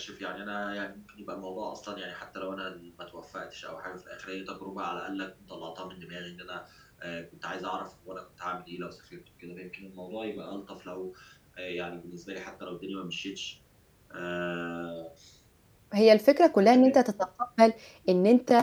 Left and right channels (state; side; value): identical; both; correlation 1.00